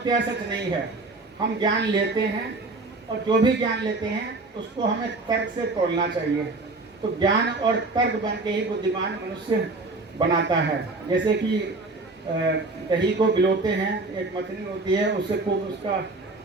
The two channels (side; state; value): left; quieter; 3.3 dB